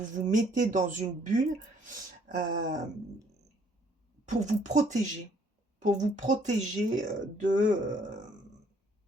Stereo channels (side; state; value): both; normal; correlation 0.64